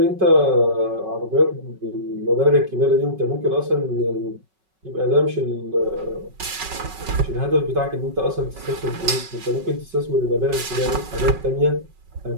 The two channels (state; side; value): late; left; 5.3 ms